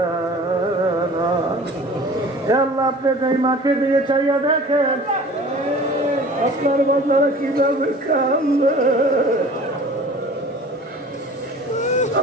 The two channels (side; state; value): both; normal; correlation 0.44